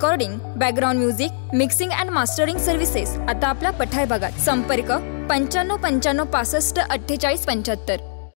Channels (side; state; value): right; silent; digital silence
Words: background music, mixing and mastering services. आता आपला पठार भागात संपर्क 95 95 65 48 75।